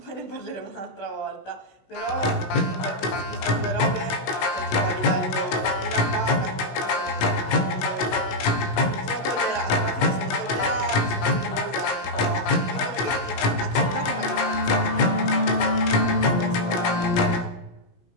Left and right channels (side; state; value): right; late; 16 ms